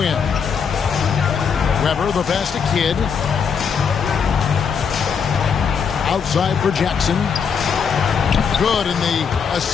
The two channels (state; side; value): quieter; right; 6.5 dB